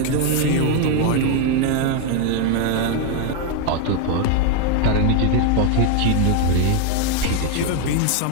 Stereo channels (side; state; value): both; different; correlation 0.01